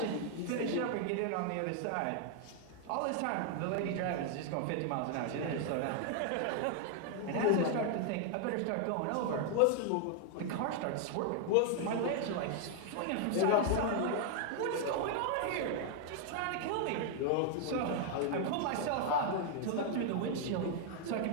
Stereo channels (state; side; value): different; both; correlation 0.00